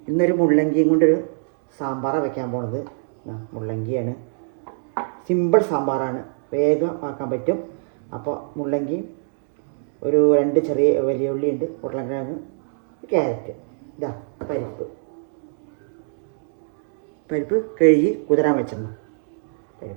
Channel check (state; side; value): silent; left; digital silence